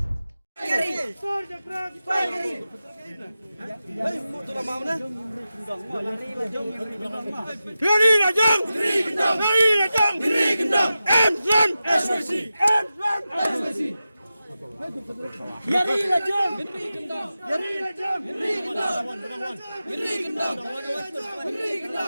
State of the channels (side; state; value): both; inverted; correlation -0.93